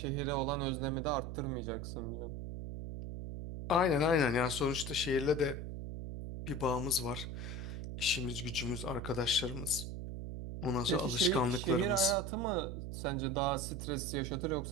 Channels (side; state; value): right; noise; hum, 6 dB below the sound